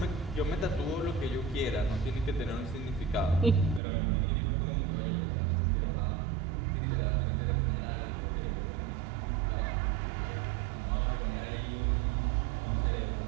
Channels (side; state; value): left; drops out; at 3.8 s